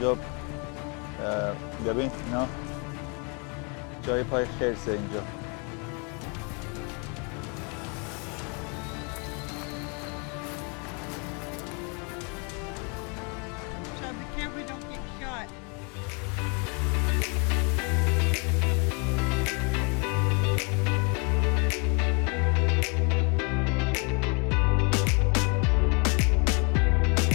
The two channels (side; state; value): right; quieter; 34.5 dB